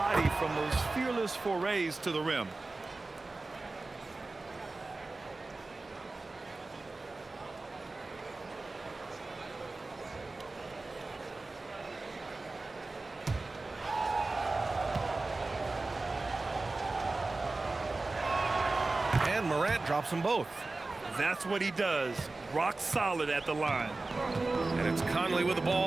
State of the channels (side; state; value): left; quieter; 3.3 dB